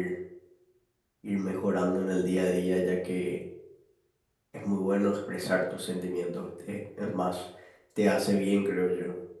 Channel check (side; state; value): both; identical; correlation 1.00